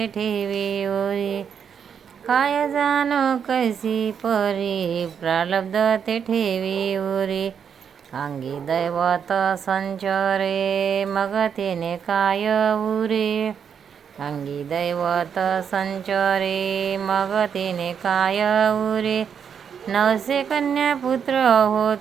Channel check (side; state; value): left; quieter; 7.4 dB